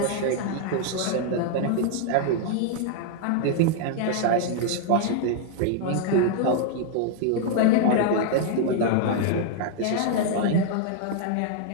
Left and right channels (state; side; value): different; both; correlation 0.00